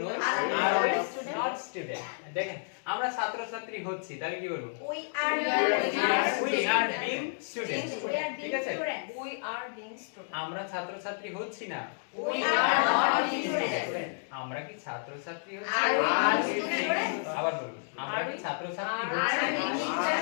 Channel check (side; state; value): right; silent; digital silence